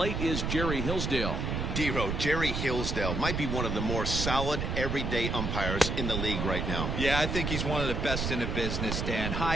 is Jerry Hillsdale. D-Row, Jerry Hillsdale might be one of the more solid everyday umpires in the league right now. Yeah, I think he's one of the best in the business, Dan.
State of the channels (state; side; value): noise; right; rumble, 1 dB below the sound